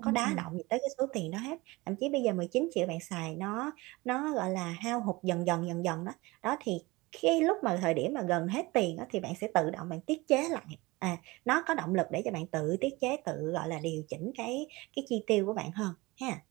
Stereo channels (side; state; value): left; quieter; 22.3 dB